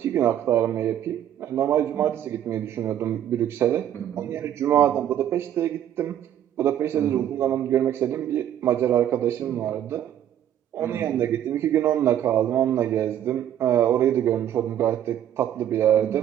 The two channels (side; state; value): left; quieter; 10.8 dB